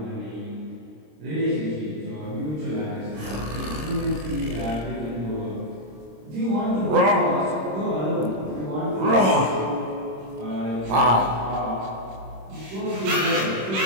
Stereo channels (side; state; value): left; late; 26 ms